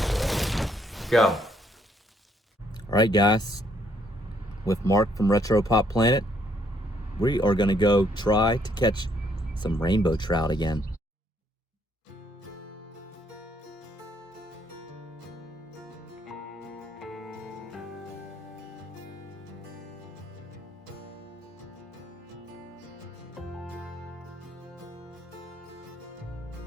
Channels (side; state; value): both; normal; correlation 0.69